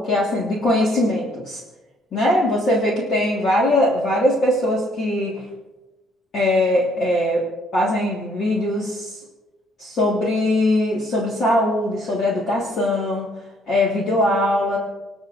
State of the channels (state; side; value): normal; both; correlation 0.65